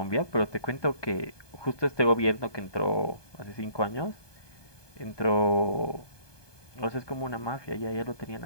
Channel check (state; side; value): late; right; 1.2 ms